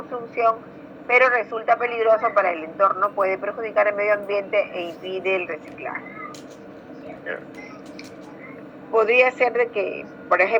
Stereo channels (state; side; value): identical; both; correlation 1.00